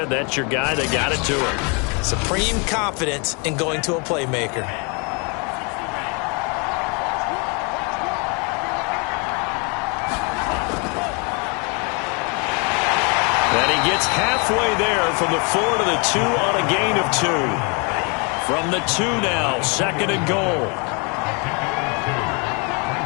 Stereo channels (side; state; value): right; quieter; 33.3 dB